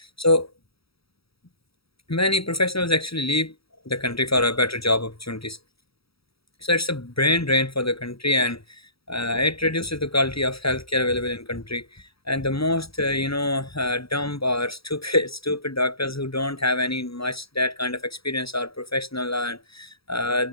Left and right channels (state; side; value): late; right; 0.76 ms